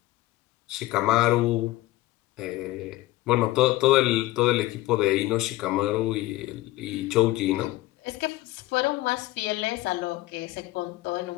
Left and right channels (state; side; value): quieter; right; 17.7 dB